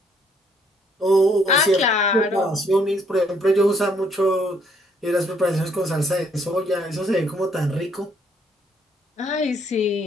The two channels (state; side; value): normal; both; correlation 0.67